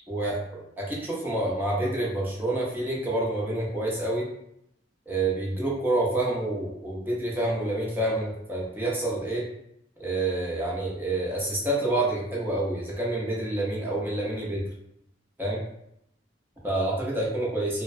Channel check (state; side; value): normal; both; correlation 0.47